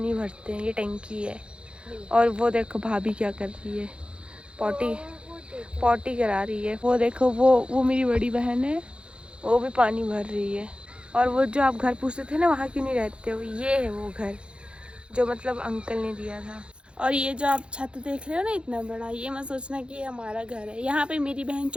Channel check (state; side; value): late; left; 0.056 ms